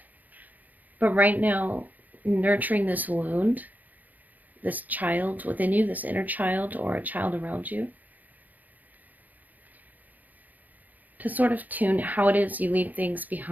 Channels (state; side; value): late; left; 0.082 ms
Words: But right now, nurturing this wound, this child within you, this inner child or a child around you, to sort of tune how it is you leave things